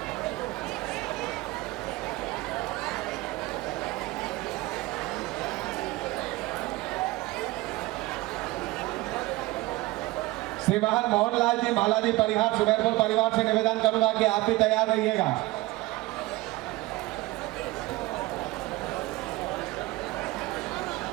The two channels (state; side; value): quieter; left; 19.7 dB